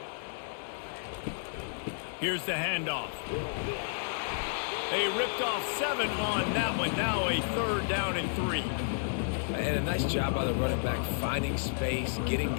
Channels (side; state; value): right; silent; digital silence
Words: Here's the handoff. They ripped off 7 on that one. Now a 3rd down and 3. And a nice job by the running back, finding space, getting